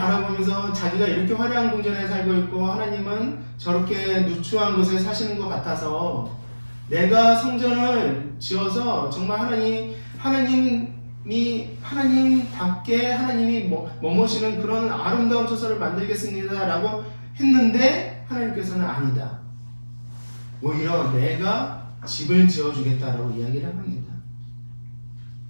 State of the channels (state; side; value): inverted; both; correlation -1.00